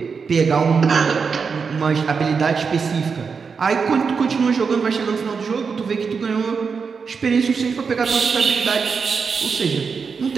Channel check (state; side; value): quieter; left; 5.5 dB